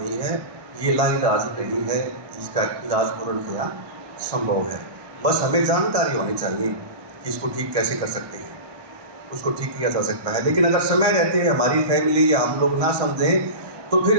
है। ये लाइलाज नहीं है, इसका इलाज पूर्णतया संभव है। बस हमें जानकारी होनी चाहिए कि इसको ठीक कैसे कर सकते हैं, उसको ठीक किया जा सकता है। लेकिन अगर समय रहते हैं हमारी फैमिली या हम लोग ना समझें तो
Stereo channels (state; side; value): late; left; 1.2 ms